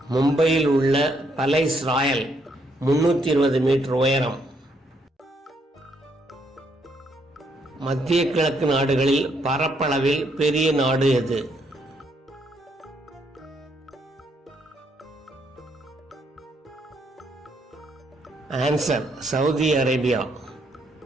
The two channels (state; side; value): normal; both; correlation 0.73